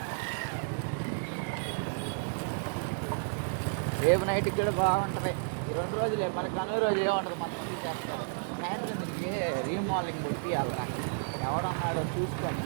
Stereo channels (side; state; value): left; silent; 56 dB below the other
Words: రేపు నైట్కి కూడా బాగుంటుంది ఈ 2 రోజులే మన కనుమ రోజు ఏముంటుంది మన సాయంత్రం తిరిగి రీమోడలింగ్ కొట్టి వెళ్తా ఎవడన్నాడో చూసుకొని